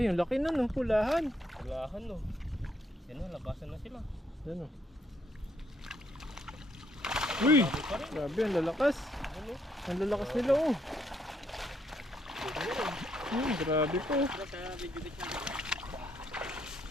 laki na no, pulahan. Walahan no. Yan o, labasan na sila. Yan o. Uy! Sabi pa rin. Grabe, ang lalakas. Ano? Ang lalakas nila oh. Pwede na rin. Grabe po. Pero sa video bit natin.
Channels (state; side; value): normal; both; correlation 0.73